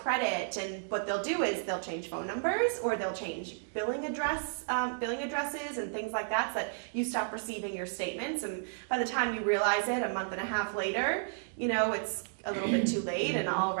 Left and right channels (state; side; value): silent; left; digital silence